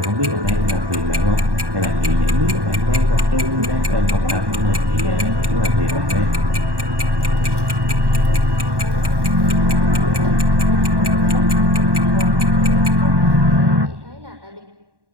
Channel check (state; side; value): late; left; 1.1 ms